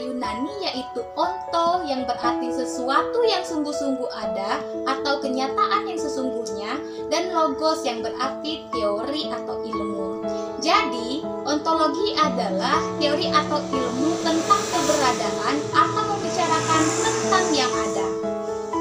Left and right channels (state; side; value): identical; both; correlation 1.00